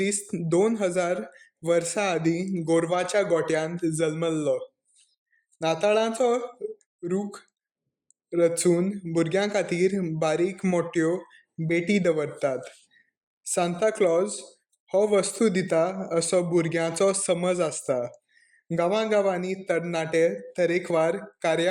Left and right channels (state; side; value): identical; both; correlation 1.00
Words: 2000 वर्सां आदीं गोरवाच्या गोठ्यांत जल्मल्लो. नाताळाचो रूख रचून भुरग्यां खातीर बारीक मोठ्यो भेटी दवरतात. सांता क्लॉज हो वस्तू दिता असो भुरग्यांचो समज आसता. गांवांनी तरणाटे तरेकवार